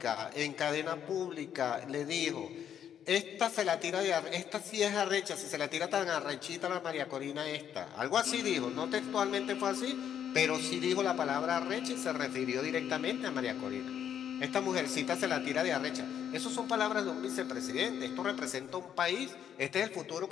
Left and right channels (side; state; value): right; quieter; 9.2 dB